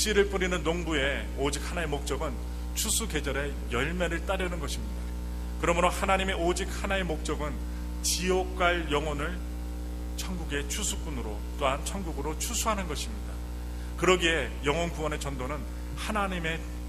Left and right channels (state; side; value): identical; both; correlation 1.00